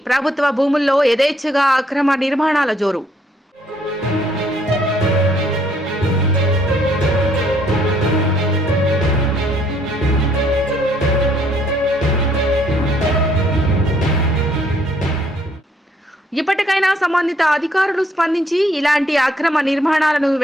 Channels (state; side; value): normal; both; correlation 0.67